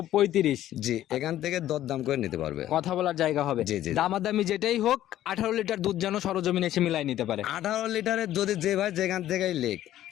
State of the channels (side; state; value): right; quieter; 13.0 dB